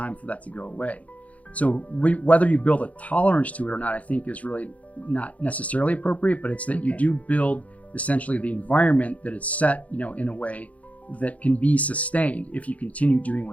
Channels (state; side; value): late; right; 0.069 ms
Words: for that to go away. So whether you build a tolerance to it or not, I think is really not necessarily appropriate, but it's that you do build essentially the environment that is set, in a way that can be sustained if you continue doing